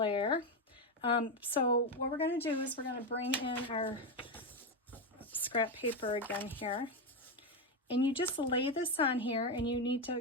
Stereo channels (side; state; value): both; normal; correlation 0.10